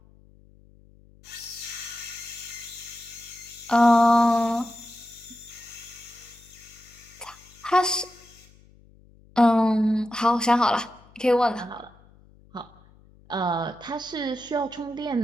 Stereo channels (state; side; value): noise; left; hum, 27 dB below the sound